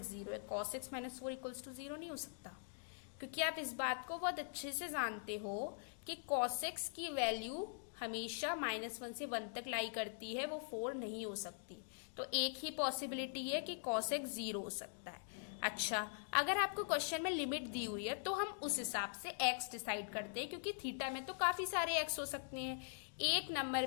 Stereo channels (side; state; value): right; silent; digital silence